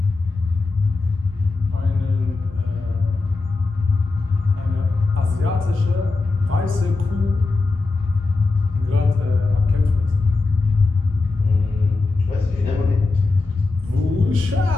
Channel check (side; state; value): right; quieter; 3.6 dB